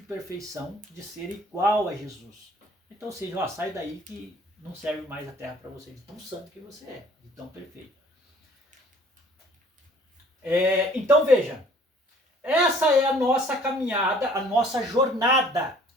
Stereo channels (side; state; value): both; normal; correlation 0.55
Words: perfeição de ser igual a Jesus. Então, ou seja, sai daí que não serve mais a terra para você, de tão santo que você é, de tão perfeito. Então veja, essa é a nossa caminhada, a nossa jornada.